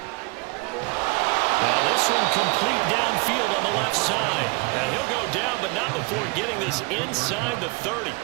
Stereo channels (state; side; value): quieter; left; 28.8 dB